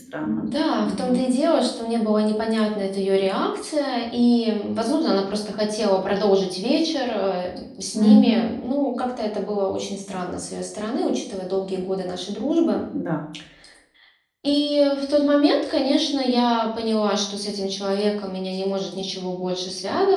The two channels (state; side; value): identical; both; correlation 1.00